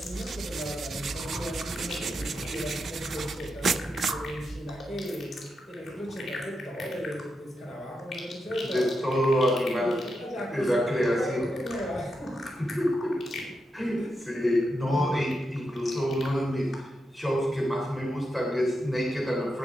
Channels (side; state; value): both; normal; correlation 0.86